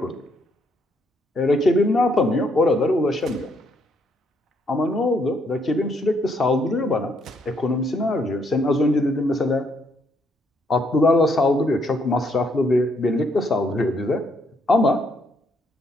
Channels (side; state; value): both; normal; correlation 0.72